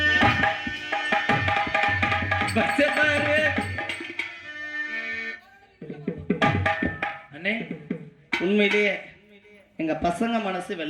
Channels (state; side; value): identical; both; correlation 1.00